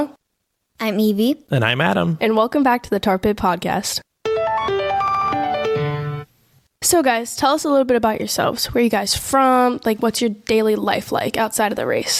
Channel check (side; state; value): both; identical; correlation 1.00